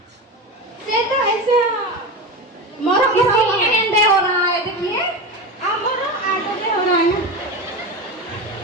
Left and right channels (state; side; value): normal; both; correlation 0.22